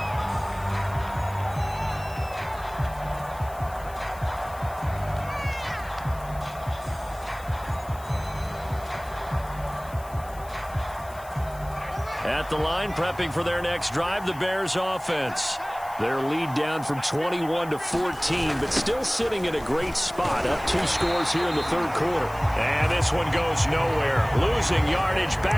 At the line, prepping for their next drive, the Bears offense. Their lead down from 21 to 14, but still sitting in a great spot. Up 2 scores here in the 3rd quarter. And this one goes nowhere. Losing yardage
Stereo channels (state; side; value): noise; left; hiss, 21 dB below the sound